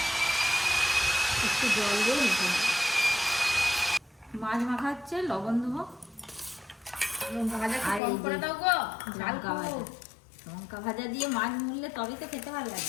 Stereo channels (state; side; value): drops out; right; at 8.0 s